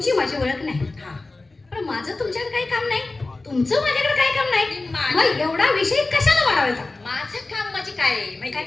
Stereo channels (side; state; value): right; quieter; 3.3 dB